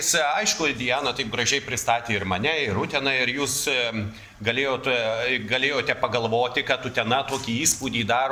Aišku, Diana taip gražiai pristatė ir mane, ir Uteną, ir jūs galėjote pagalvoti, kad Utena tokį įspūdį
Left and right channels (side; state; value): both; identical; correlation 1.00